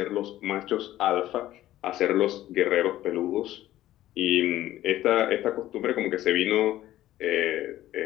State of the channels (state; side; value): quieter; right; 14.2 dB